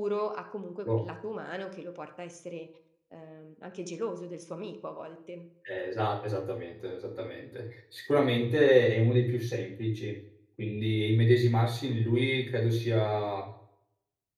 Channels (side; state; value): both; identical; correlation 1.00